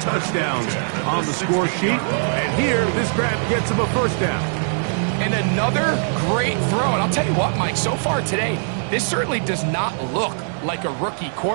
touchdowns on the score sheet. And here, this grab gets him a 1st down. And another great throw. And I'll tell you what, Mike, so far today, this certainly does not look like a rookie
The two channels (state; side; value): silent; left; digital silence